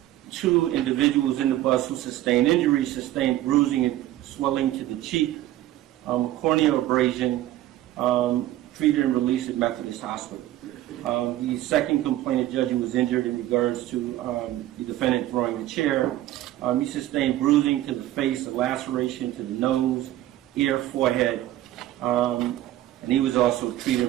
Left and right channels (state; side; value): quieter; left; 14.4 dB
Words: two individuals in the bus who sustained injuries sustained bruising and swelling to the cheek, corneal abrasion, treated and released at Methodist Hospital. The second complainant, Judge, who was injured in regards to the defendant throwing the chair. He sustained bruising to the face, a laceration to the nose, ear, forehead, and he was also treated